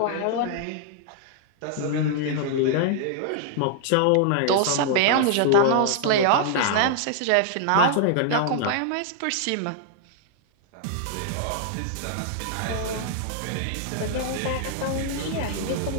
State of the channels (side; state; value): both; different; correlation -0.01